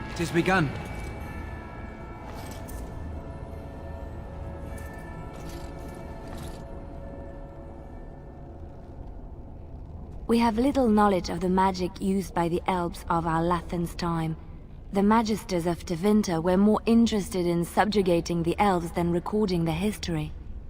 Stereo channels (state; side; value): identical; both; correlation 1.00